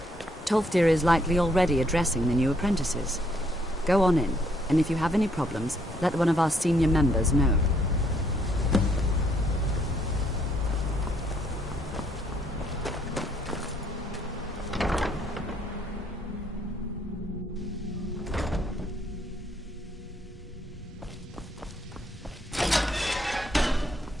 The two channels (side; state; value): both; normal; correlation 0.69